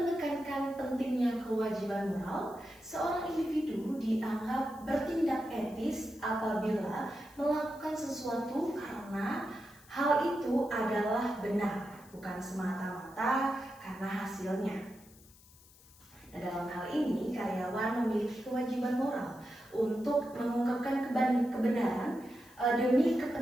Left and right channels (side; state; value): left; noise; hiss, 25 dB below the sound